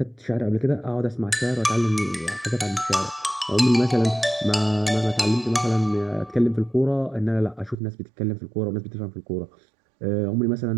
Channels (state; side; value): drops out; left; at 7.8 s